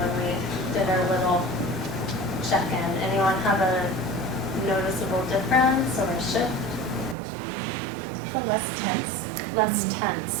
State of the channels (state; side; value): drops out; left; at 7.2 s